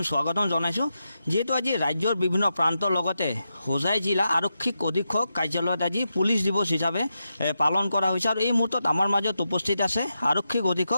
স্বাগতম জনাইছোঁ। যিহেতু আজি ৰাজ্যৰ বিভিন্ন প্ৰান্তৰ লগতে হোজাই জিলা আৰক্ষী অধীক্ষক কাৰ্যালয়ত আজি পুলিচ দিৱস হিচাপে পালন কৰা হৈছে আৰু এই মুহূৰ্তত আমাৰ মাজত উপস্থিত আছে আৰক্ষী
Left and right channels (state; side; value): inverted; both; correlation -0.87